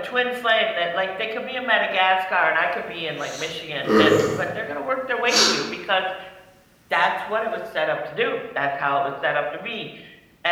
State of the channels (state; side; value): identical; both; correlation 1.00